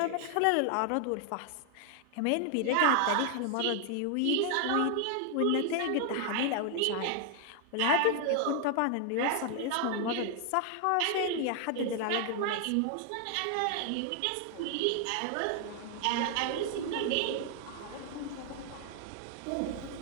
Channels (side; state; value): both; different; correlation 0.00